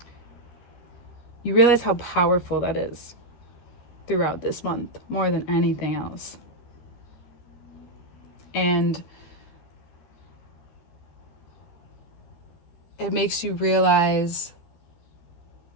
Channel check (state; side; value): late; right; 13 ms